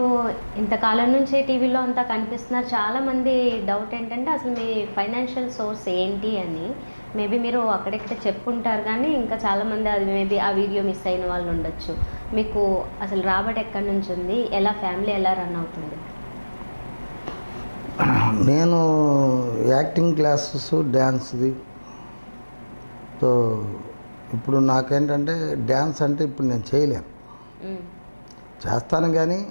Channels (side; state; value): both; inverted; correlation -1.00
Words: ఇంతకాలం నుంచే టీవీలో అంతా కనిపిస్తున్నారు. చాలామంది డౌట్ ఏంటంటే అసలు మీ ఫైనాన్షియల్ సోర్స్ ఏంటి అని. మేబీ మీరు అక్కడెక్కడ చెప్పుంటారు కానీ ఇంకా చాలామంది అది మేబీ ఆ వీడియో మిస్ అయిన వాళ్ళు ఉండొచ్చు. మీకు అసలు రాబడి ఎక్కడి నుంచి ఉంది, ఎలా ఫ్యామిలీ ఎలా రన్ అవుతుంది? నేను యాక్టింగ్ క్లాసెస్ డ్యాన్స్ది. సో ఇప్పుడు నాకేంటంటే డ్యాన్స్ అంటే ఇప్పుడు నేను చేయలేను. చేస్తాను కానీ